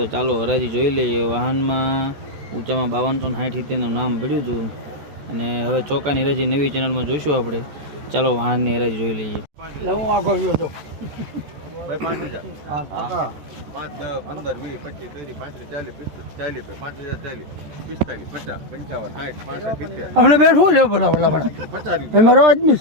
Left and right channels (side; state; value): left; late; 14 ms